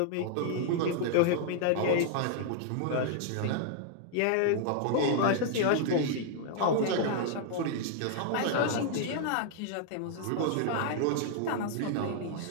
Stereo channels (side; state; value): both; different; correlation -0.01